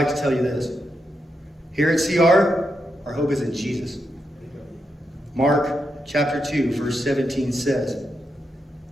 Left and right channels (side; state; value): both; normal; correlation 0.84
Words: to tell you this. Here at CR, Our hope is in Jesus. Mark chapter 2, verse 17 says,